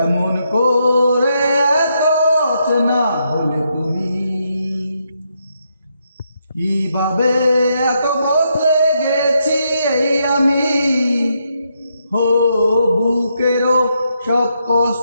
করে এত চেনা হলে তুমি, কিভাবে এত বদলে গেছি এই আমি। হো বুকেরও সব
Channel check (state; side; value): inverted; both; correlation -0.79